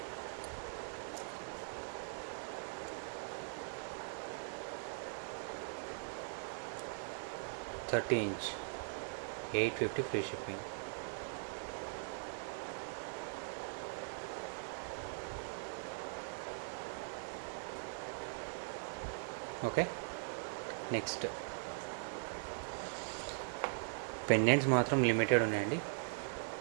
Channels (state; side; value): silent; left; digital silence